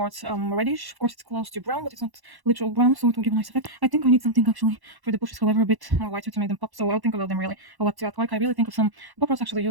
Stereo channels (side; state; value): left; late; 1.1 ms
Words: reddish. Of course it's close to brown, but it's not literal brown, so it will give a nice effect. I think I need something actually for the bushes, however, a bit more whiter to make them pop, so I'll think about them really, what to act like. I really think of some, Bob Ross actually